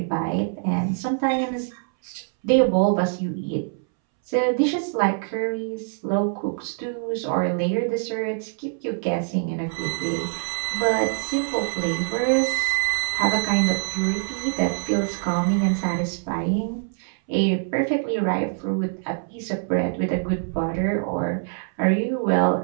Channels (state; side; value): silent; left; 62 dB below the other